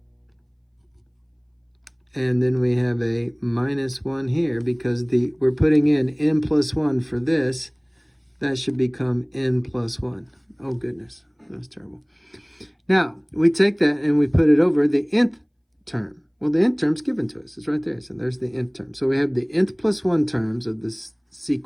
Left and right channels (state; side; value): identical; both; correlation 1.00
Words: And then we have a minus 1 here because we're putting in n plus 1 for this. That should become n plus 1. Oh, goodness. That's terrible. Now, we take that and we put it over the nth term. Well, the nth term's given to us. It's right there. So there's the nth term. So we have the nth plus 1 terms of this